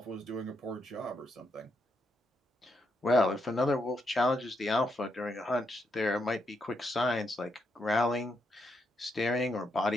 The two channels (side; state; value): both; normal; correlation 0.80